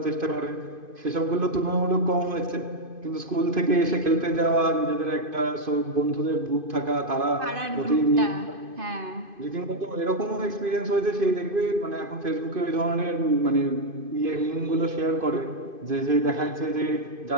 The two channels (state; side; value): late; left; 2.5 ms